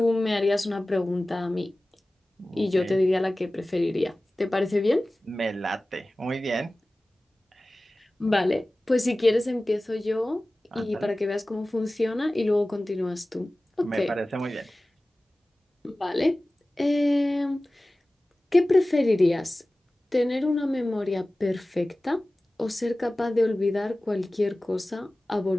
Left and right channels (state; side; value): normal; both; correlation 0.97